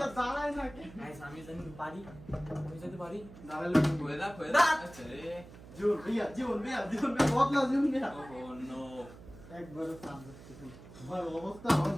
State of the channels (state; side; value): noise; right; hum, 18 dB below the sound